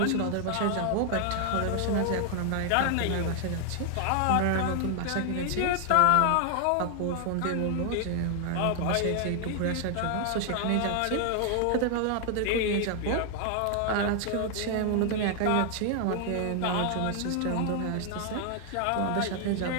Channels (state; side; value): different; both; correlation 0.00